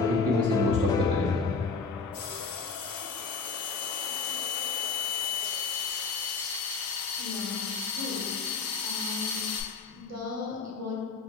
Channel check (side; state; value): right; quieter; 4.5 dB